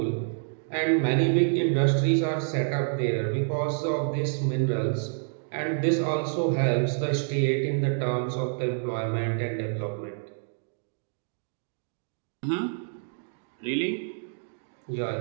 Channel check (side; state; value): left; silent; digital silence